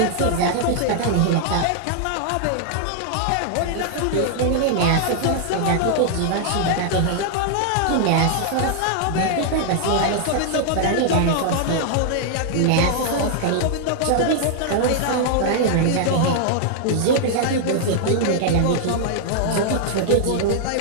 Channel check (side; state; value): both; different; correlation 0.00